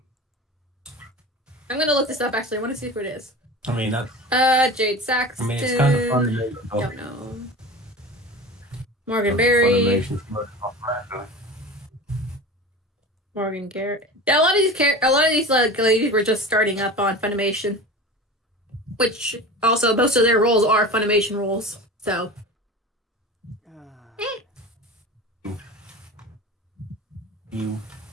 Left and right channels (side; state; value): both; normal; correlation 0.33